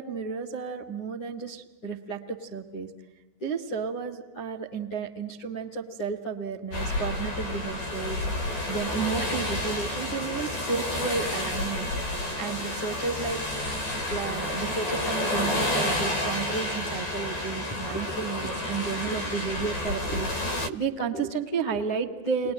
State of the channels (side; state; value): right; late; 14 ms